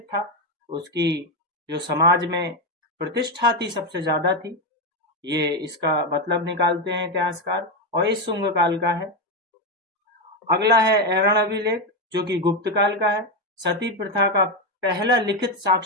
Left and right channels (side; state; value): both; normal; correlation 0.08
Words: था, उसकी जो समाज में प्रतिष्ठा थी सबसे ज्यादा थी, ये इसका मतलब निकालते हैं इतिहासकार, और इस शुंग काल का है। अगला है ऐरण अभिलेख, जो कि गुप्त काल का है। सती प्रथा का पहला लिखित